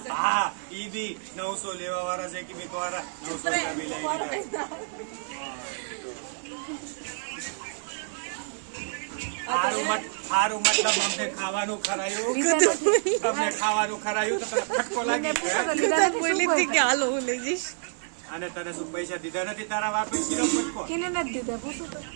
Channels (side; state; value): left; silent; 59 dB below the other